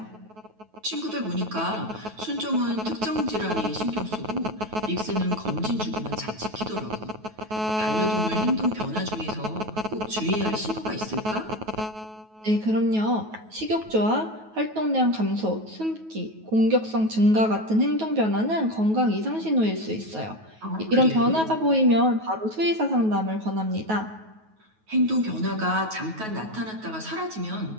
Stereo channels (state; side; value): late; left; 9.3 ms